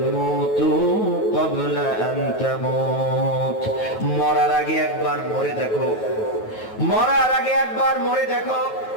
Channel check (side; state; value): right; late; 9.2 ms